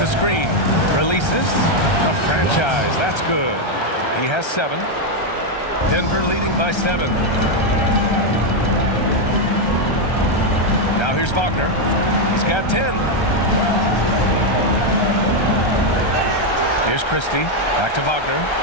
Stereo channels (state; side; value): late; right; 1.3 ms